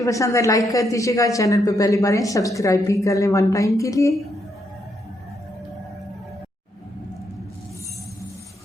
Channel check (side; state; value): both; normal; correlation 0.77